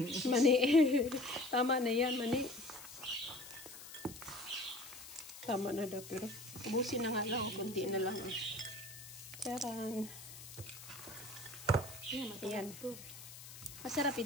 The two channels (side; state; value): left; noise; hiss, 14 dB below the sound